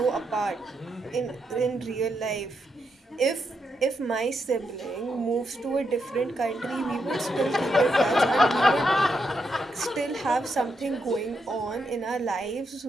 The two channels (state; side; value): normal; both; correlation 0.82